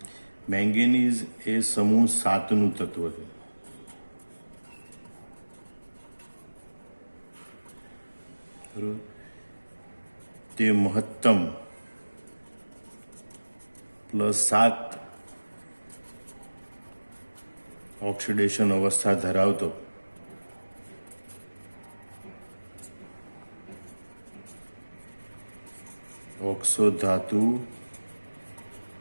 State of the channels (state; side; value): inverted; both; correlation -1.00